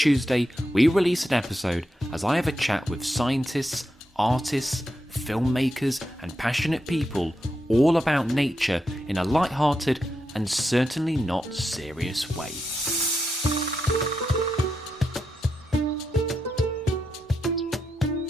Tuesday we release an episode as I have a chat with scientists, artists, filmmakers, and passionate people all about nature in a light-hearted and certainly not serious way.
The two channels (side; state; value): both; normal; correlation 0.85